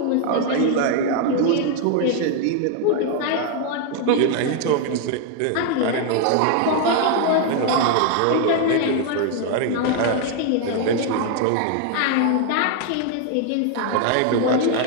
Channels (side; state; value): both; different; correlation 0.00